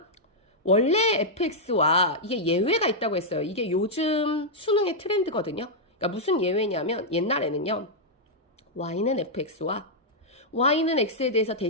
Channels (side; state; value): both; normal; correlation -0.06